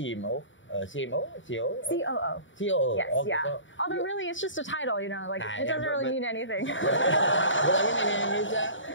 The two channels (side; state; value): right; late; 0.55 ms